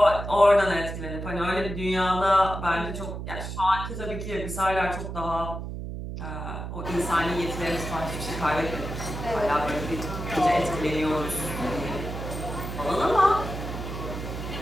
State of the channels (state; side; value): noise; right; hum, 7 dB below the sound